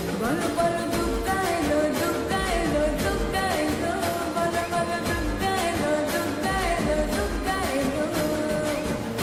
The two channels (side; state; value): both; identical; correlation 1.00